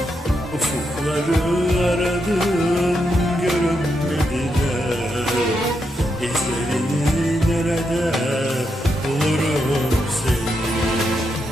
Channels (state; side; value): normal; both; correlation 0.83